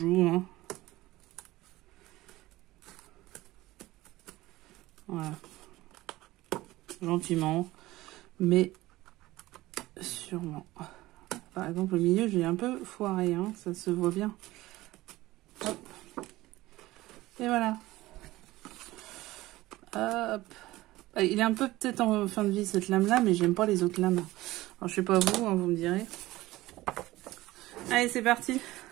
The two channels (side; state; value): left; quieter; 17.8 dB